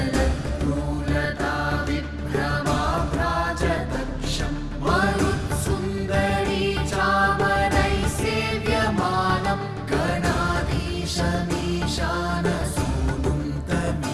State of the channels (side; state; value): both; identical; correlation 1.00